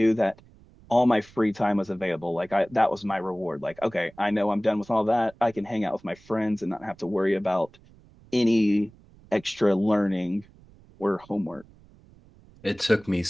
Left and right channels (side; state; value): right; noise; rumble, 26 dB below the sound